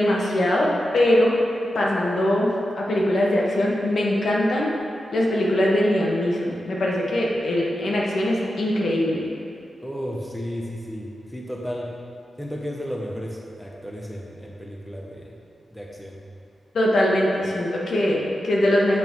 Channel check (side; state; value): both; normal; correlation 0.90